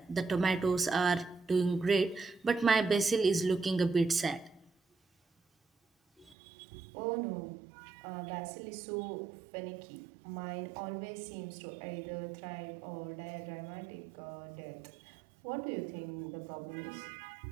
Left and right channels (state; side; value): drops out; left; at 6.4 s